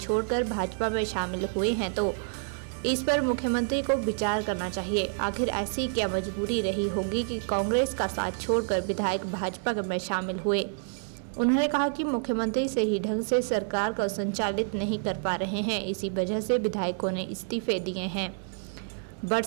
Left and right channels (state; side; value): silent; left; 59 dB below the other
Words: भाजपा में शामिल हुए हैं तो इस पर मुख्यमंत्री को विचार करना चाहिए। आखिर ऐसी क्या मजबूरी रही होगी कि कांग्रेस का साथ छोड़कर विधायक भाजपा में शामिल हुए। उन्होंने कहा कि मुख्यमंत्री सही ढंग से सरकार को संचालित नहीं कर पा रहे हैं, इसी वजह से विधायकों ने इस्तीफे दिए हैं।